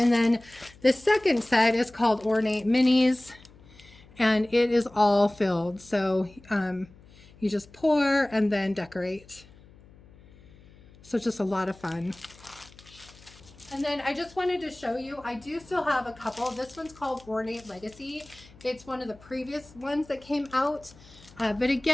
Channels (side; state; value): left; noise; hum, 24 dB below the sound